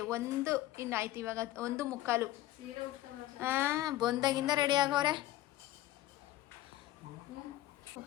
1 ಇಂದ ಆಯ್ತು. ಇವಾಗ 1:45. ಬಂದಾಗಿಂದ ರೆಡಿ ಆಗವ್ರೆ.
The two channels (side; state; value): right; quieter; 15.2 dB